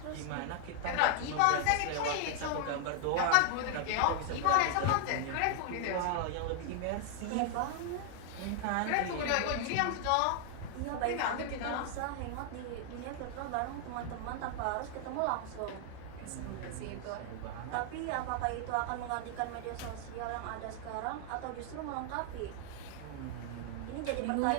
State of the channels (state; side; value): different; both; correlation 0.00